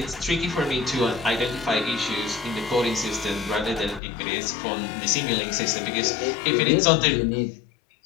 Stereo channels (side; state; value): right; drops out; at 4.0 s